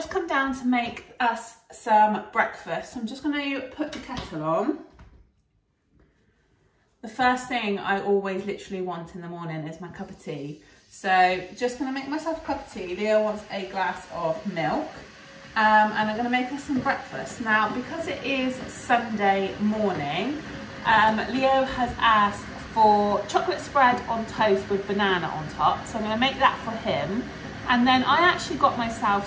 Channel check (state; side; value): identical; both; correlation 1.00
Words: come down to make us some breakfast. I'm just going to put the kettle on. The first thing I always literally want in the morning is my cup of tea. So just going to make myself a cup of tea. Leo wants a glass of milk. And I'm going to make us some breakfast. Now, because it is Sunday morning, Leo has asked for chocolate spread on toast with banana on top. So I'm going to make that for him. And then I actually got